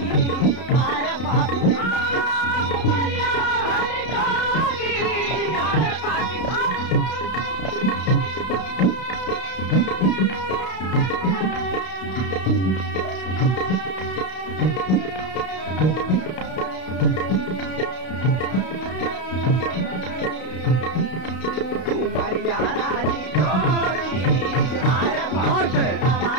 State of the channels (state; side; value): late; right; 32 ms